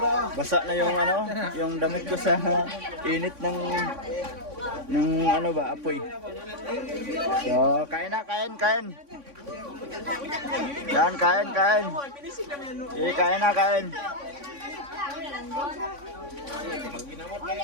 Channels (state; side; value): late; left; 3.6 ms